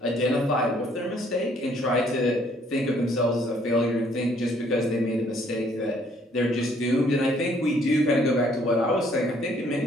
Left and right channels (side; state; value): both; normal; correlation 0.64